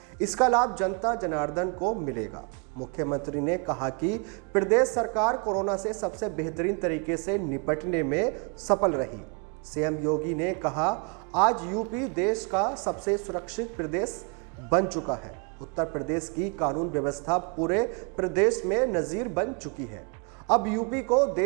इसका लाभ जनता जनार्दन को मिलेगा। मुख्यमंत्री ने कहा कि प्रदेश सरकार कोरोना से सबसे बेहतरीन तरीके से निपटने में सफल रही। सीएम योगी ने कहा, आज यूपी देश का सबसे सुरक्षित प्रदेश बन चुका है। उत्तर प्रदेश की कानून व्यवस्था पूरे प्रदेश में नजीर बन चुकी है। अब यूपी को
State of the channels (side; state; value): left; quieter; 36.3 dB